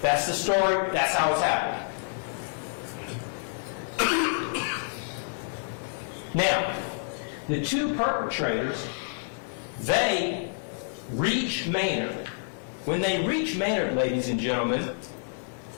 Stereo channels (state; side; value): silent; right; digital silence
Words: That's the story, that's how it's happening. Now, the 2 perpetrators, they reach Maynard. When they reach Maynard, ladies and gentlemen,